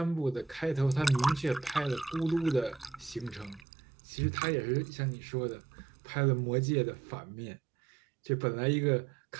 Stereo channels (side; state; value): left; drops out; at 3.7 s